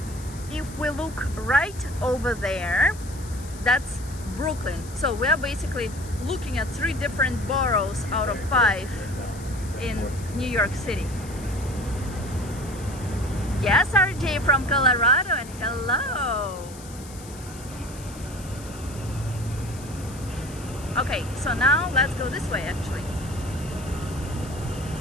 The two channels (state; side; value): noise; left; hiss, 17 dB below the sound